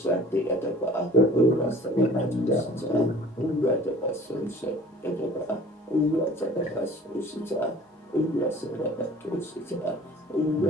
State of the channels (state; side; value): normal; both; correlation 0.47